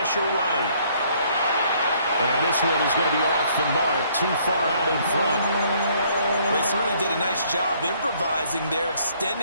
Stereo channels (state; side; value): inverted; both; correlation -0.64